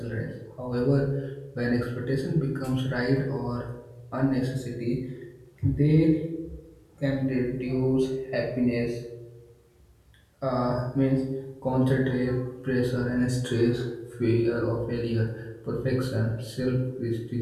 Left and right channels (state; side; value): identical; both; correlation 1.00